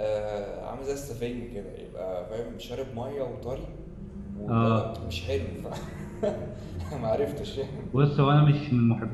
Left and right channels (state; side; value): identical; both; correlation 1.00